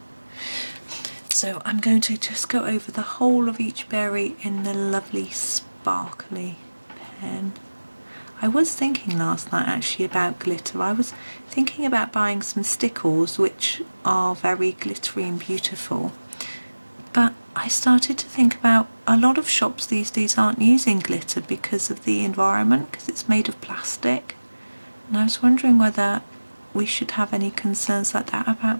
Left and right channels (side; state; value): both; inverted; correlation -1.00